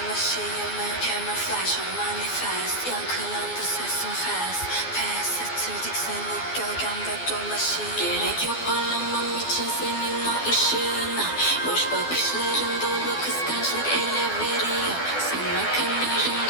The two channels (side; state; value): right; late; 12 ms